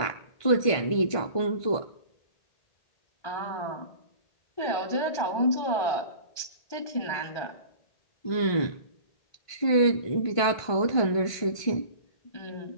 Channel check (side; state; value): right; late; 1.5 ms